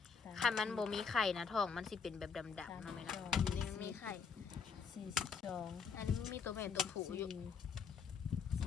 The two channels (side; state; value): right; quieter; 6.0 dB